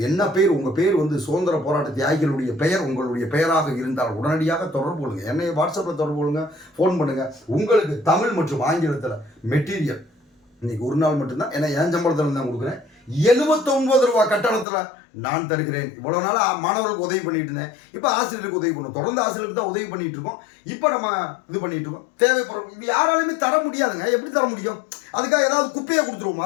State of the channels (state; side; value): drops out; right; at 14.7 s